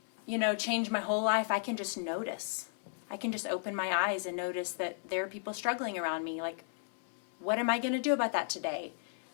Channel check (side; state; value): right; silent; 55 dB below the other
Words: change my whole life. I can just notice. I can just open my eyes and notice that there are people struggling around me. Like, what am I going to do about that today?